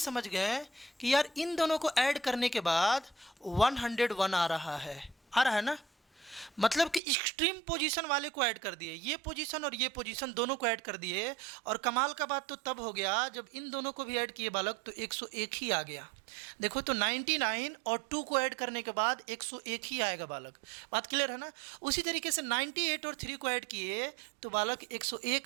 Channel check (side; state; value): left; drops out; at 7.0 s